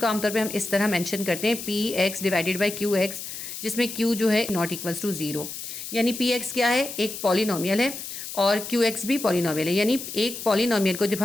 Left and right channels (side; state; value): left; noise; hiss, 9 dB below the sound